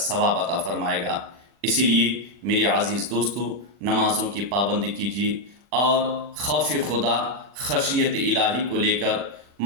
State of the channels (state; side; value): late; left; 40 ms